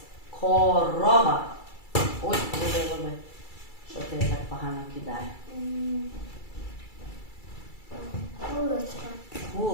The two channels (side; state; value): right; late; 2.3 ms